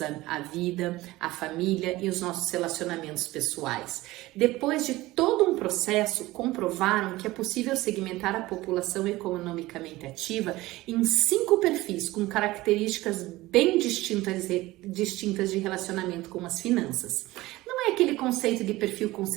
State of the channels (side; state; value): left; quieter; 18.6 dB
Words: a vida, a família e os nossos relacionamentos pessoais. Depois de todo um processo, comprovaram que é possível segmentar a população economicamente ativa em 5 perfis com características bem distintas de relacionamento com as finanças. Não é aquele conceito de perfil